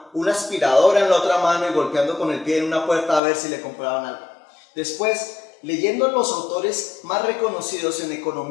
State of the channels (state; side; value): drops out; right; at 3.2 s